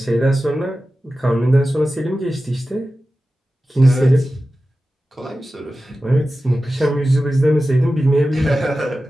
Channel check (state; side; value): normal; both; correlation 0.94